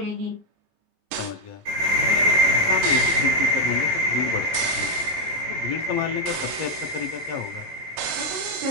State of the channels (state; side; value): late; left; 20 ms